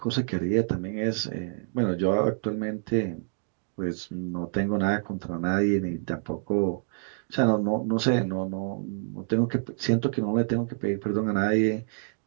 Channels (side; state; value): left; silent; digital silence